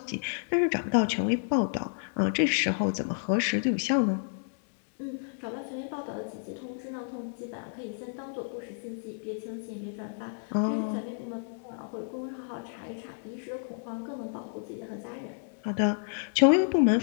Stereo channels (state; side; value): silent; right; digital silence